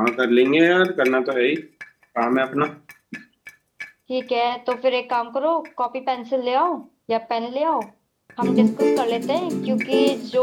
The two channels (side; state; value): both; identical; correlation 1.00